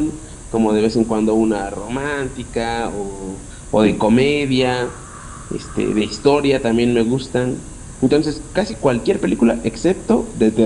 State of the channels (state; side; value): identical; both; correlation 1.00